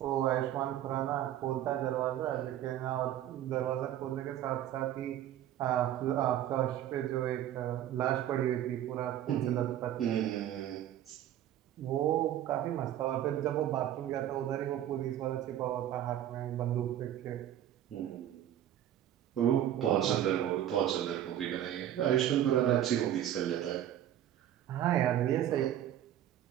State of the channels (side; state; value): left; quieter; 11.7 dB